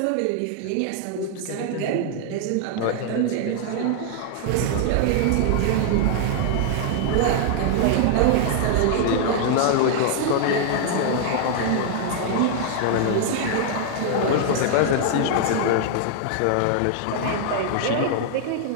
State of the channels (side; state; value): both; different; correlation -0.01